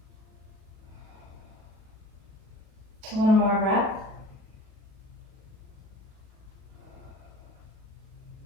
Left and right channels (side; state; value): left; late; 37 ms